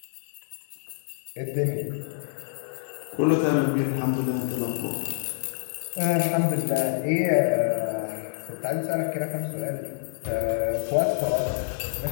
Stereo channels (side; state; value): right; silent; digital silence